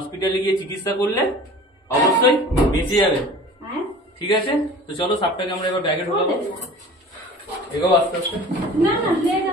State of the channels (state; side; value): normal; both; correlation 0.42